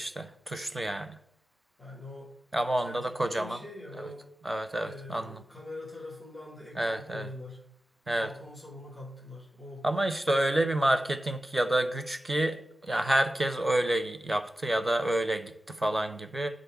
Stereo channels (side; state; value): both; normal; correlation 0.94